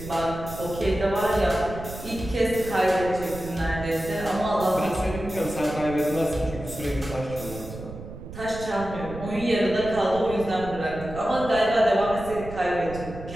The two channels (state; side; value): noise; right; rumble, 12 dB below the sound